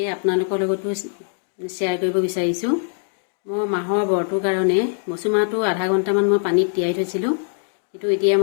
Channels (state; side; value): silent; right; digital silence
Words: আপোনালোকৰ লগতো শ্বেয়াৰ কৰিব বিচাৰিছোঁ। মই মাহৰ বৰটোৰ কাৰণে মচু মাহটো আধা ঘণ্টামান মই পানীত তিয়াই থৈছিলোঁ, কিন্তু এতিয়া